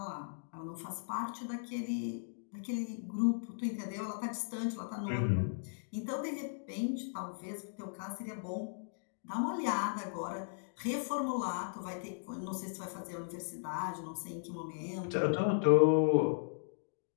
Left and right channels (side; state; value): right; silent; digital silence